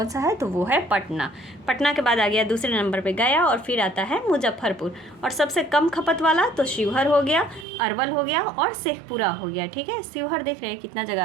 सा है? तो वो है पटना। पटना के बाद आ गया दूसरे नंबर पे गया और फिर आता है मुजफ्फरपुर। और सबसे कम खपत वाला तो शिवहर हो गया, अरवल हो गया और शेखपुरा हो गया। ठीक है, शिवहर देख रहे हैं कितना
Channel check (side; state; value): left; drops out; at 7.7 s